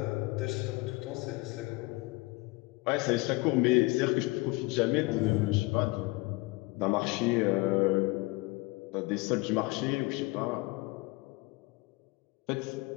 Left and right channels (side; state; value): right; quieter; 23.8 dB